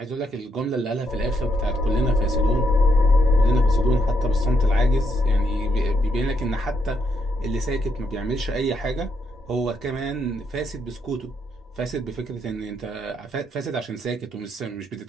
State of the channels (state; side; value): normal; both; correlation 0.77